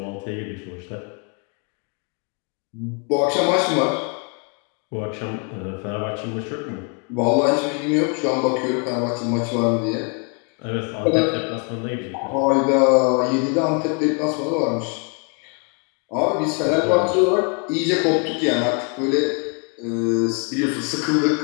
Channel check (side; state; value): right; quieter; 36.9 dB